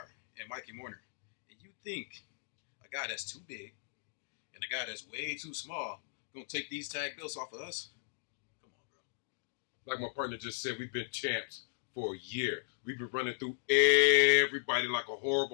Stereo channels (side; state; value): right; silent; digital silence